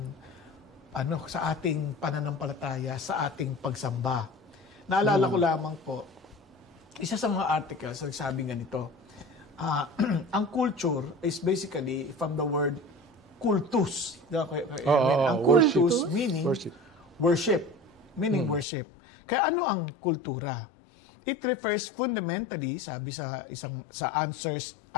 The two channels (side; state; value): right; drops out; at 18.7 s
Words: sa ating pananampalataya, sa ating pagsamba. Naalala ko lamang po, isa sa mga articles, nagsabi ganito, ang culture is basically from the word kultus. Ang kultus meaning worship. Meaning worship. Kaya ano ang kultura? It refers fundamentally, sabi sa